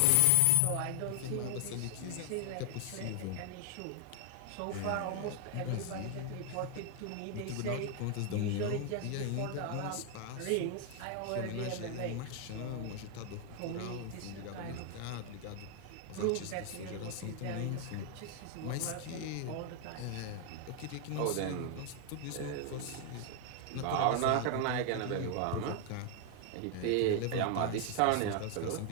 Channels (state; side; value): different; both; correlation 0.00